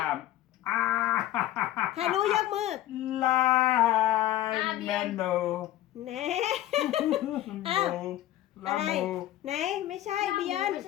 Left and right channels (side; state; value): right; quieter; 13.8 dB